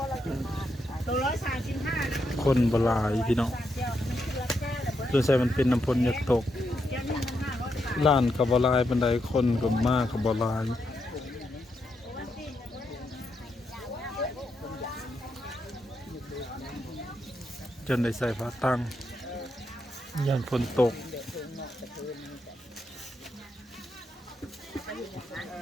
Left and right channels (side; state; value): both; normal; correlation 0.82